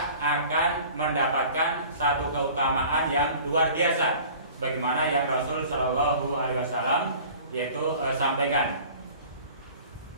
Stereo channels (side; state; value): both; inverted; correlation -0.45